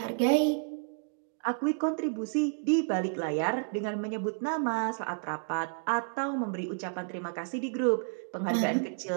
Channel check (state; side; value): silent; left; 57 dB below the other